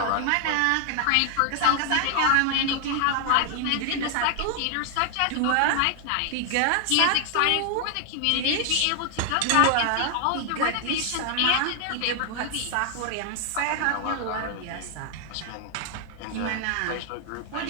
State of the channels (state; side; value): different; both; correlation 0.00